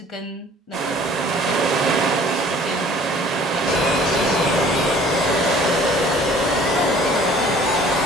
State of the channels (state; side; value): normal; both; correlation 0.52